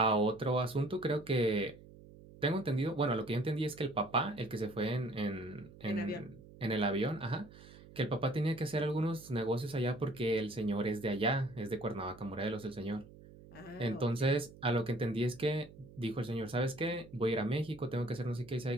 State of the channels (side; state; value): right; noise; hum, 20 dB below the sound